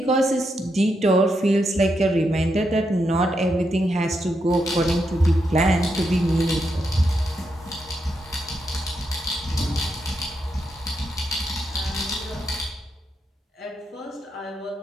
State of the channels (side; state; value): both; normal; correlation 0.82